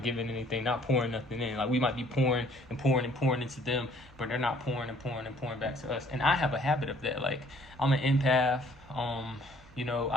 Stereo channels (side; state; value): both; normal; correlation 0.59